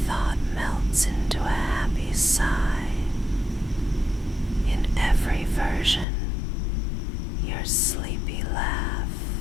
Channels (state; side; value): drops out; right; at 6.1 s